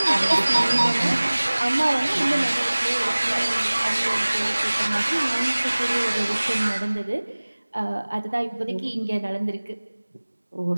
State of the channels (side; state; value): both; inverted; correlation -1.00